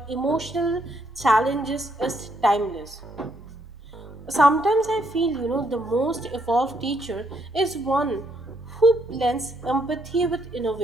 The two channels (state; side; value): normal; both; correlation 0.74